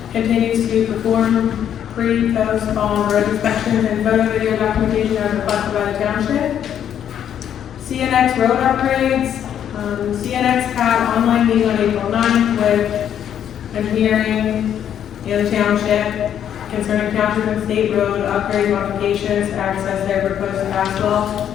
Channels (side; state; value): right; quieter; 9.6 dB